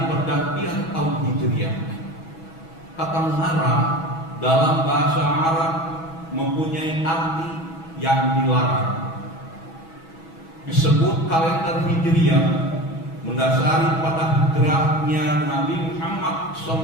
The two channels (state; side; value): late; right; 6.1 ms